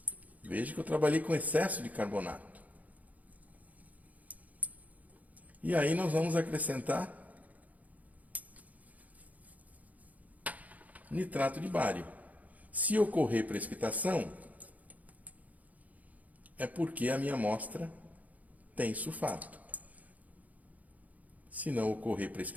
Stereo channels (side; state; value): left; late; 0.076 ms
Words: Veja que eu trabalhei com excesso de carbonato. E aí nós vamos acrescentar nitrato de bário. Se ocorrer precipitação, é porque a minha amostra tem sulfato. Se não ocorrer